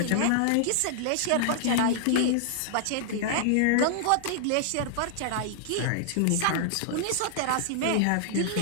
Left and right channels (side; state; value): both; different; correlation -0.01